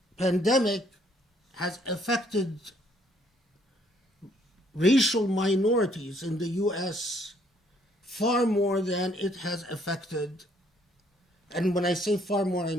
pandemic has affected racial minorities in the US far more than it has affected, and when I say far more, I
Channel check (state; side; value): normal; both; correlation 0.66